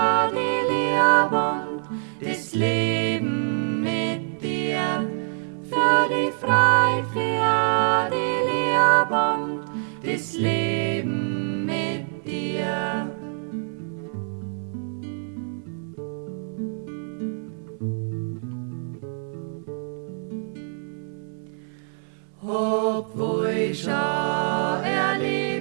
die Liebe und das Leben mit dir. Für die Freiheit, für die Liebe und das Leben mit dir. Obwohl ich schon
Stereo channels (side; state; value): left; silent; 62 dB below the other